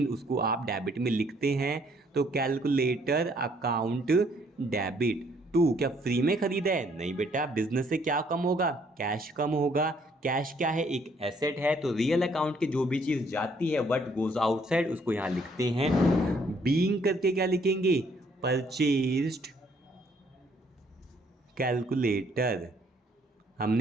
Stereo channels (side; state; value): both; normal; correlation 0.65